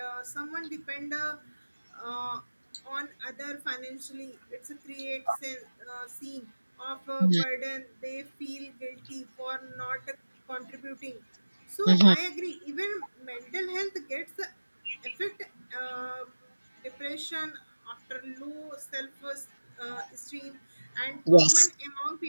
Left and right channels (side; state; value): both; inverted; correlation -1.00